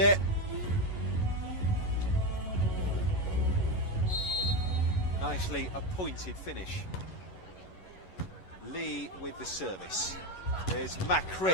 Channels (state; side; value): late; right; 11 ms